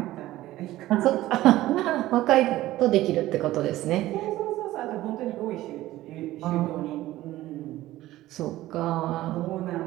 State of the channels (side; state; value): left; quieter; 15.8 dB